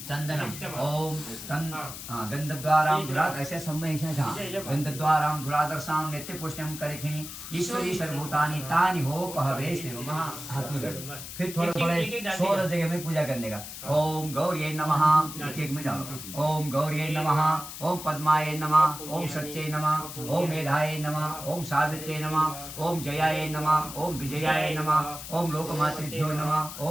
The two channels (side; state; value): left; noise; hiss, 10 dB below the sound